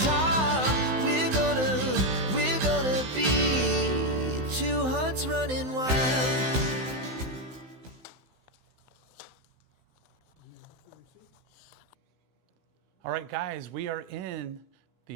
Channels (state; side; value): late; left; 16 ms